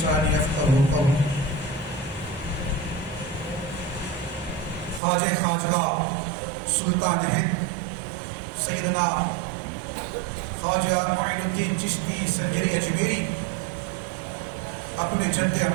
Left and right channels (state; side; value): drops out; left; at 5.0 s